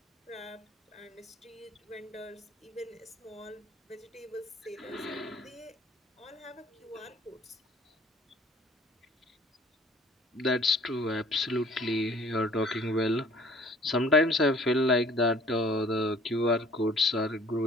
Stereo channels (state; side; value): normal; both; correlation 0.53